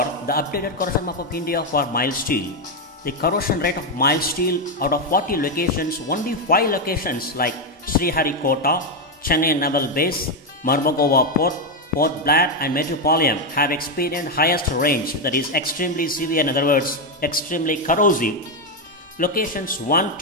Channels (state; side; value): normal; both; correlation 0.05